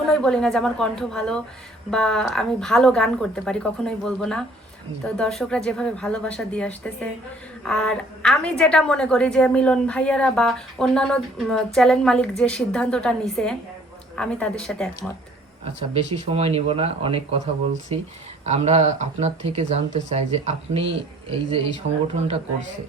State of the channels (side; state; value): both; normal; correlation 0.57